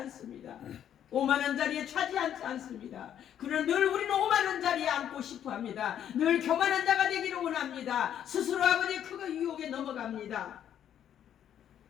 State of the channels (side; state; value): right; quieter; 10.0 dB